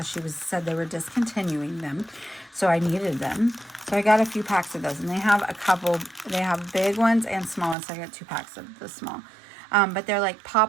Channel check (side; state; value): left; drops out; at 7.8 s